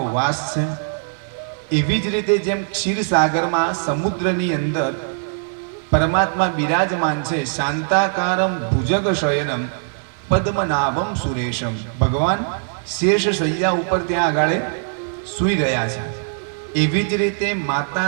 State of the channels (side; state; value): left; silent; digital silence